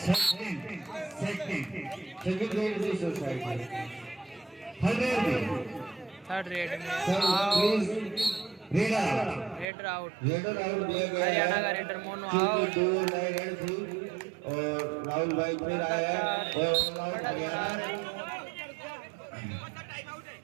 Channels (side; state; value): left; drops out; at 9.7 s